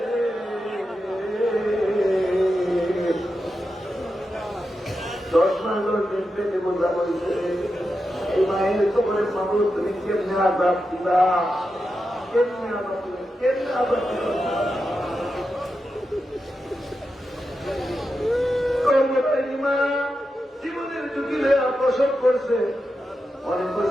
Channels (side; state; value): both; normal; correlation 0.89